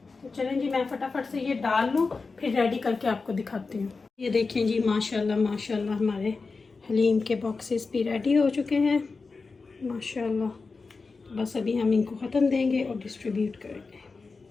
तो चलें जी, मैं फटाफट से ये डाल लूँ, फिर रेडी करके आपको दिखाती हूँ। ये देखें जी, माशाल्लाह माशाल्लाह हमारे हलीम के बॉक्सेस भी रेडी हो चुके हैं माशाल्लाह। बस अभी हम इनको ख़त्म देंगे और डिस्ट्रीब्यूट करेंगे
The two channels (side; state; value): right; quieter; 4.2 dB